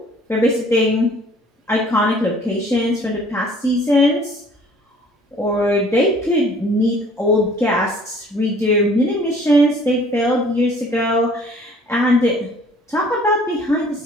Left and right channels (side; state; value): both; normal; correlation 0.54